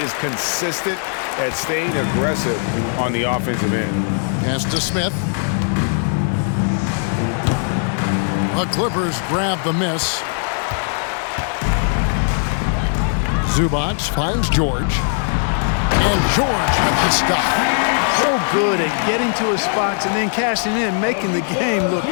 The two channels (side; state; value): right; silent; digital silence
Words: is consistent at staying aggressive on the offensive end. Pass to Smith. The Clippers grab the miss. Zubac finds George. And George with the stop. so good at getting to his spots and then cashing in, making the game look